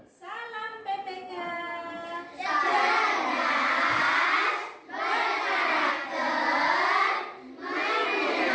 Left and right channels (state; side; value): identical; both; correlation 1.00